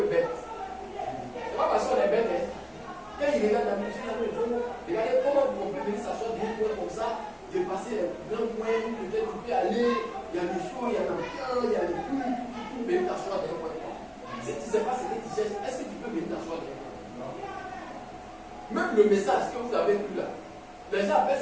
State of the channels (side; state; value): both; identical; correlation 1.00